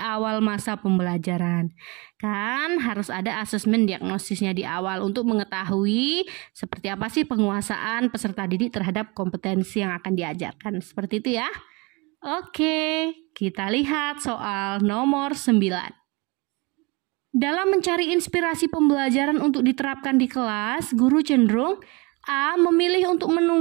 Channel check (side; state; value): left; quieter; 27.3 dB